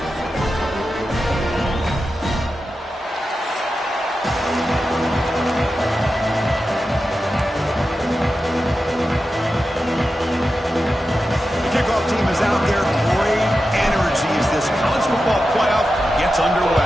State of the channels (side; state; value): both; normal; correlation 0.91